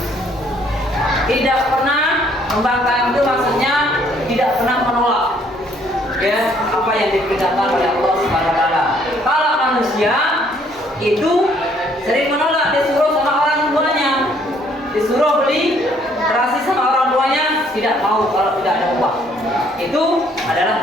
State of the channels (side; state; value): both; normal; correlation 0.64